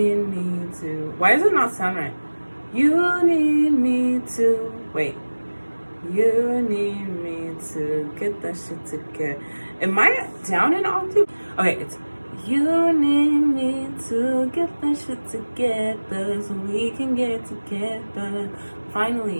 me to, why does it not sound right? You need me to, wait. You need me to get that shit together. Am I down an octave? Okay, it's you need me to get that shit together so we can get together.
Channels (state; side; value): inverted; both; correlation -1.00